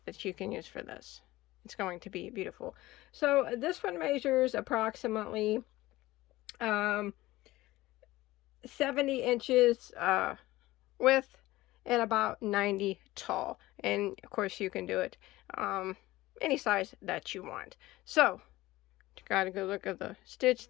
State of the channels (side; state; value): right; quieter; 17.9 dB